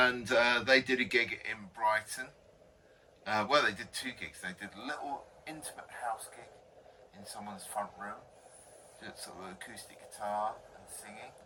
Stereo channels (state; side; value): identical; both; correlation 1.00